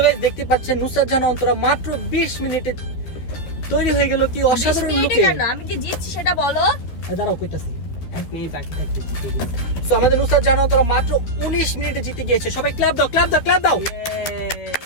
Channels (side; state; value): right; late; 12 ms